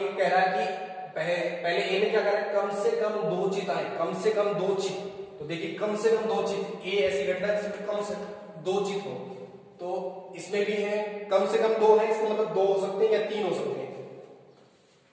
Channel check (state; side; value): identical; both; correlation 1.00